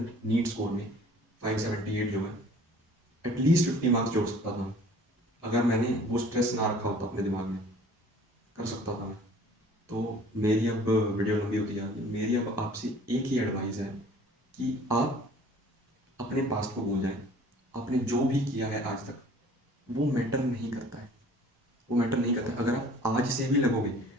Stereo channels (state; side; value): normal; both; correlation 0.50